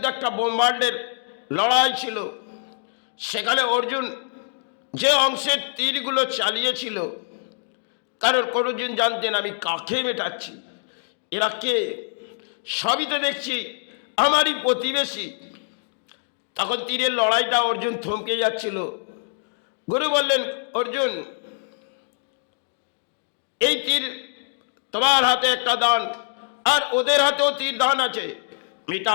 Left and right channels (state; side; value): silent; right; digital silence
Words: একটা ব্রহ্মাণ্ডের লড়াই ছিল। সেখানে অর্জুন যে অংশের তীরগুলো চালিয়েছিল, কারণ অর্জুন জানতেন আমি কাকে মেটাচ্ছি, এরা কে, সবই তো দেখছি আমারই প্রতিবেশী। তখন তীরের লড়াইটা অর্জুন থমকে যাচ্ছিল। গুরু বললেন, অর্জুন, এই তীর তোমার হাতে একটা দান, আর ওদের হাতেও তীর দান আছে,